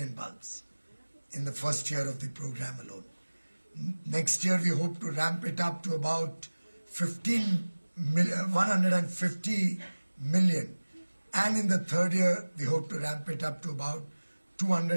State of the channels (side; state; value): both; inverted; correlation -1.00